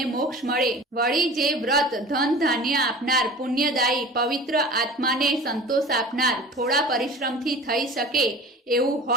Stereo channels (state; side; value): normal; both; correlation 0.38